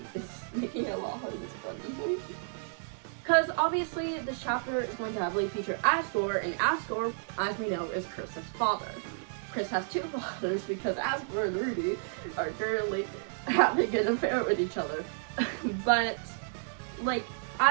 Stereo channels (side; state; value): left; silent; digital silence